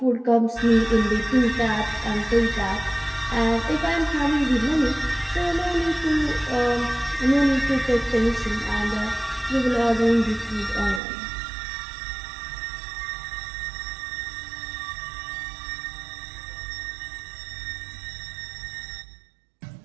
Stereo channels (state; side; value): drops out; left; at 11.0 s